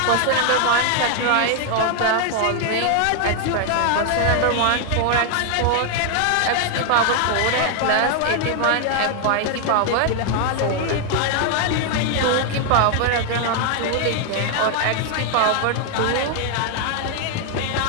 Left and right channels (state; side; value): different; both; correlation 0.00